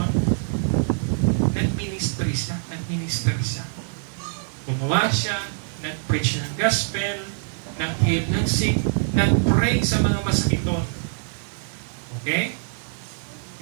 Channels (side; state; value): left; silent; digital silence